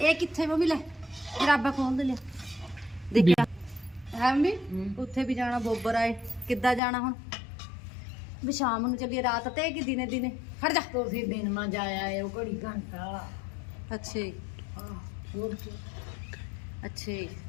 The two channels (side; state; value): right; drops out; at 6.8 s